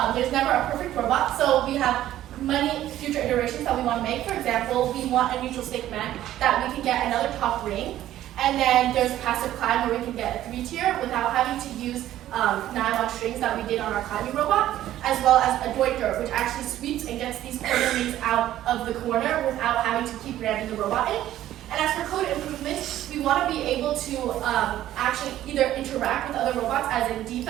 there's never a perfect robot, so we have many future iterations that we want to make. For example, we want a neutral stick man that we can get another top ring, and then there's passive climb where we can get a 3-tier without having to use nylon strings that we did on our climbing robot, as well as a Deuter, which actually sweeps and gets these corner rings out of the corner without having to keep ramming the robot in. And as for code improvements, we want to be able to actually either interact with other robots as in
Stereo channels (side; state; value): left; quieter; 13.1 dB